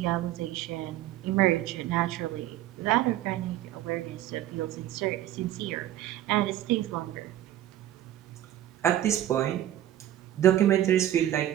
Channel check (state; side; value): quieter; left; 12.8 dB